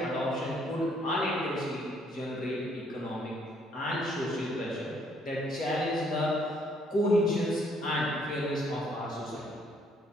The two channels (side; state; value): both; normal; correlation 0.67